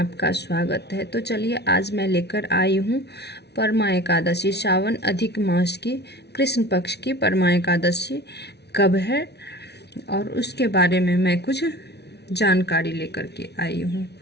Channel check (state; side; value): late; right; 0.49 ms